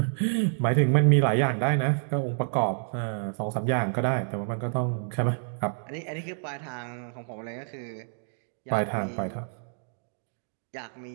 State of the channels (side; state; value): left; silent; digital silence